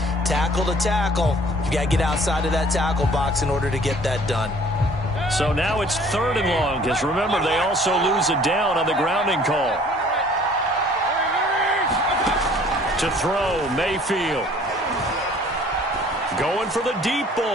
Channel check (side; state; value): both; normal; correlation 0.54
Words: Tackle to tackle. You got to get outside of that tackle box in order to get that done. So now it's 3rd and long, because remember, they also lose a down on the grounding call. To throw, Mayfield. Going for the deep